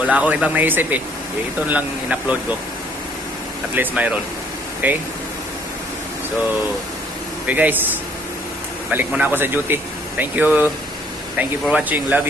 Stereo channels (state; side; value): normal; both; correlation 0.62